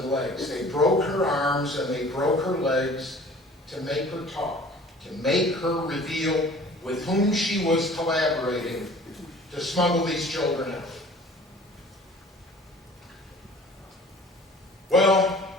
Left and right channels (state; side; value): normal; both; correlation 0.47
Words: legs. They broke her arms and they broke her legs to make her talk, to make her reveal with whom she was collaborating to smuggle these children out. Well,